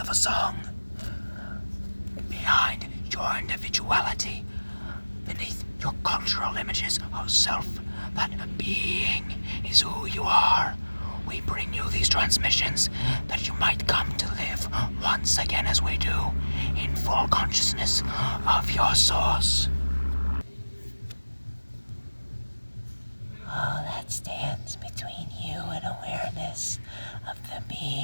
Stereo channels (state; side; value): inverted; both; correlation -1.00